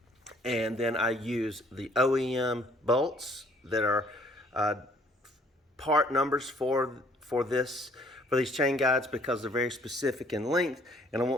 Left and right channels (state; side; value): normal; both; correlation 0.60